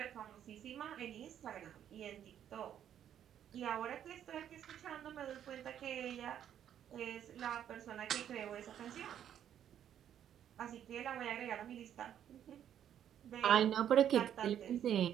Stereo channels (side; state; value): left; quieter; 10.0 dB